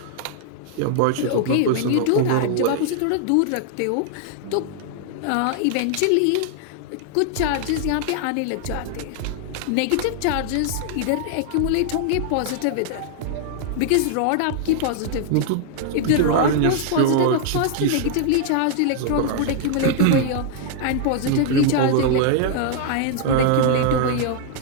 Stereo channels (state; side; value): different; both; correlation 0.00